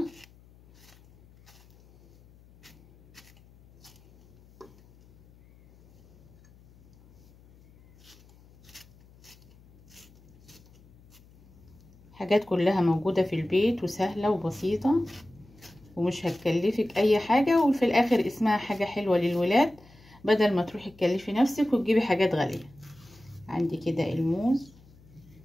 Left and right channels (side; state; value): left; noise; hum, 26 dB below the sound